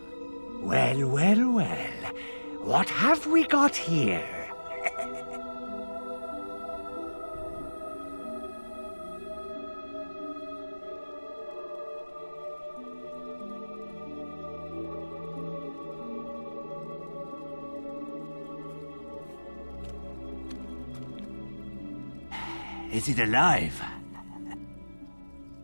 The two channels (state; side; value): inverted; both; correlation -1.00